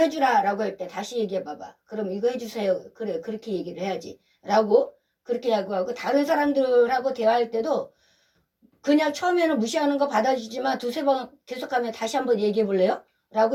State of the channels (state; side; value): identical; both; correlation 1.00